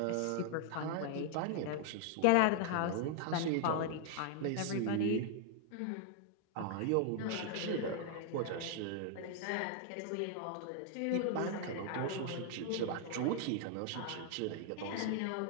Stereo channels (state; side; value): different; both; correlation 0.00